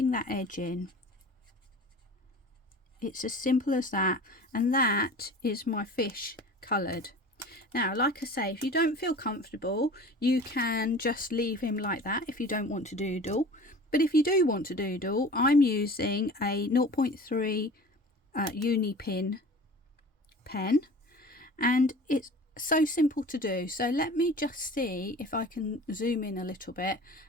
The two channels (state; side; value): normal; both; correlation 0.40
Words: that edge in. It's as simple as that, and that is my fish coloured. Now, like I say, if you don't feel comfortable, you can just leave him like that if you don't want to doodle. But if you do want to doodle, I'm using a 0.3 uni pin pen, and it's so simple to do. So let me just see if I can zoom in a little bit